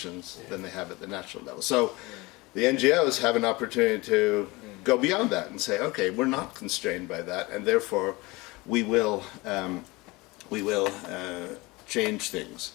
than they have at the national level. So the NGOs have an opportunity to go beyond that and say, okay, we're not constrained by that, and therefore we will change things.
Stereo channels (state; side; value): quieter; right; 23.0 dB